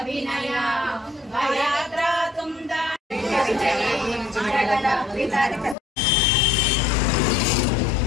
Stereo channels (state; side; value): drops out; right; at 5.8 s